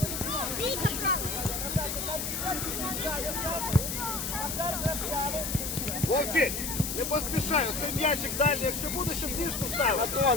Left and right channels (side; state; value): left; noise; hiss, 3 dB below the sound